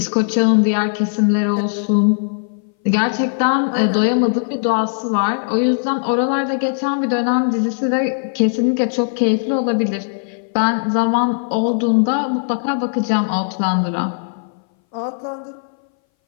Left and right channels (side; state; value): right; silent; 62 dB below the other